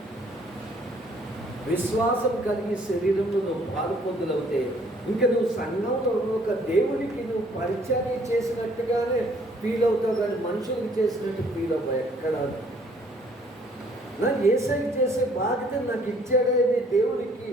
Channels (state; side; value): normal; both; correlation 0.61